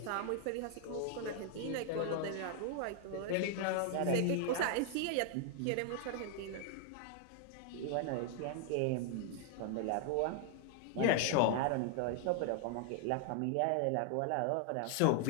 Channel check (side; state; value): both; different; correlation 0.00